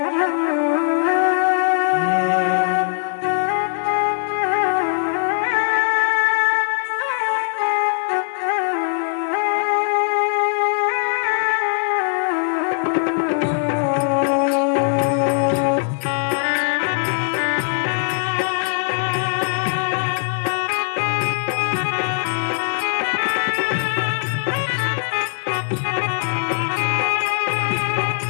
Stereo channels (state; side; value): silent; right; digital silence